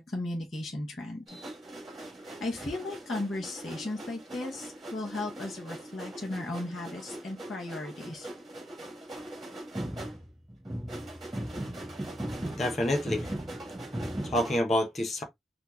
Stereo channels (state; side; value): normal; both; correlation 0.82